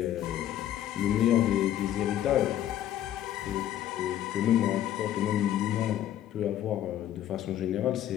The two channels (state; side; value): quieter; right; 11.7 dB